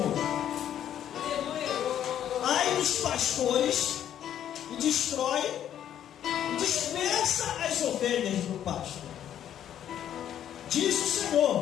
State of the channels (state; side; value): quieter; right; 10.4 dB